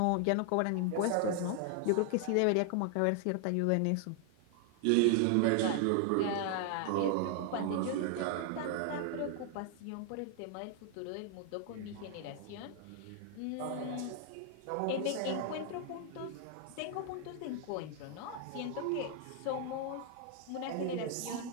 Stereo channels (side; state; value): both; different; correlation 0.00